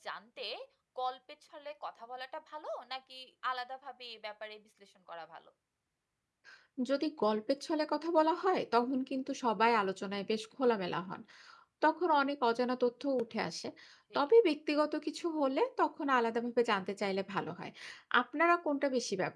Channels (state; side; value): identical; both; correlation 1.00